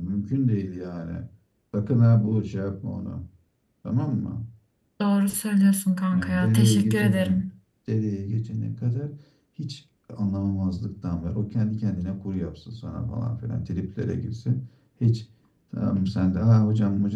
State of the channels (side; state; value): both; identical; correlation 1.00